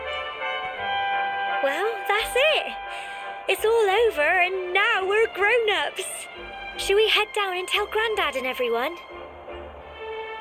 Well, that's it. It's all over and now we're grown-ups. Should we head down and tell Grandad and everyone?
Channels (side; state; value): both; identical; correlation 1.00